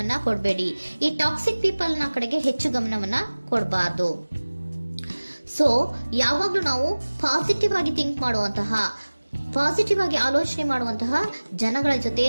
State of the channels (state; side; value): inverted; both; correlation -1.00